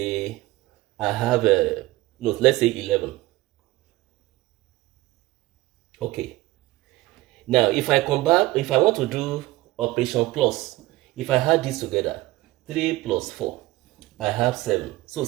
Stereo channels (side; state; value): left; quieter; 18.8 dB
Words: I have a no, let's say 11. Okay. Now, if I want to do operation plus, if I add this together, 3 plus 4, I have 7. So